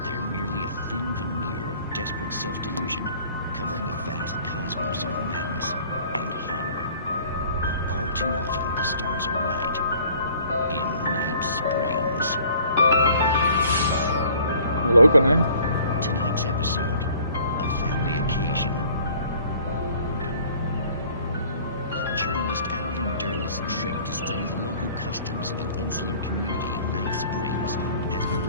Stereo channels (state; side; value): inverted; both; correlation -0.53